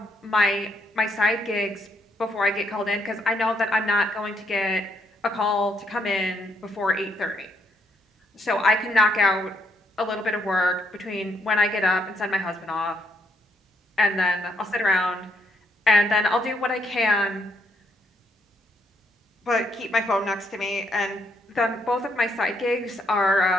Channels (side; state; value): both; normal; correlation 0.74